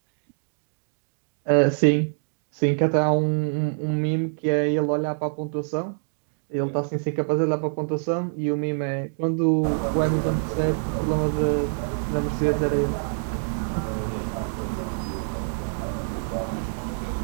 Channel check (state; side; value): silent; left; digital silence